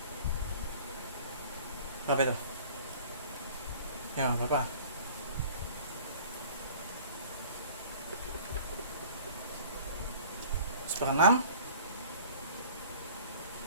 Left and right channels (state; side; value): inverted; both; correlation -0.47